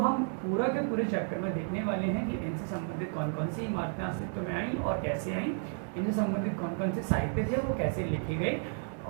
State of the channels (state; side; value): silent; left; 56 dB below the other